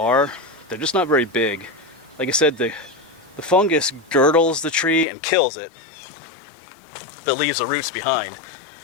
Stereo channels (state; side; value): drops out; right; at 5.1 s